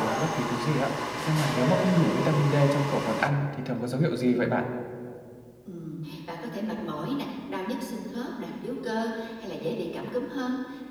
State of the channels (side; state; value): both; identical; correlation 1.00